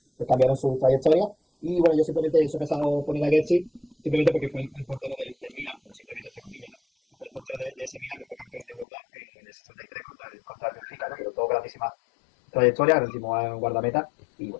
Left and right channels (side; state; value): right; drops out; at 8.8 s